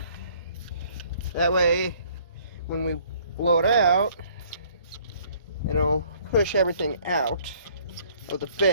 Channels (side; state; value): both; inverted; correlation -0.59